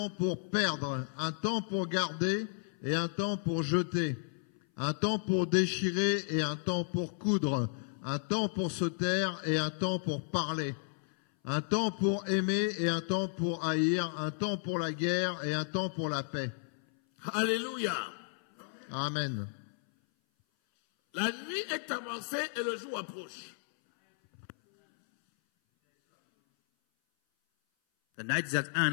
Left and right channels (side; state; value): right; silent; 56 dB below the other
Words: pour perdre, un temps pour garder et un temps pour jeter, un temps pour déchirer et un temps pour coudre, un temps pour se taire et un temps pour parler, un temps pour aimer et un temps pour haïr, un temps pour la guerre et un temps pour la paix. Alléluia. Amen. La nuit est avancée et le jour approche. The night is at